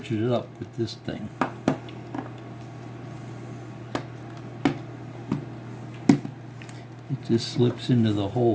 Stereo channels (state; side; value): identical; both; correlation 1.00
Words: it up with this thing. It just slips into the